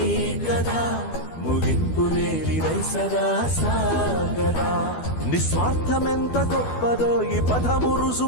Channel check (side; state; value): right; late; 12 ms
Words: కదా ముగింపు లేనిదై సదా సాగదా నిస్వార్థమెంత గొప్పదో ఈ పదము